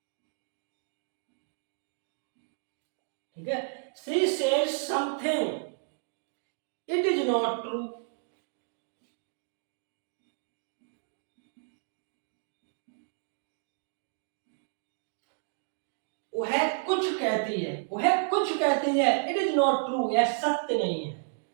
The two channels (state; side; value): silent; left; digital silence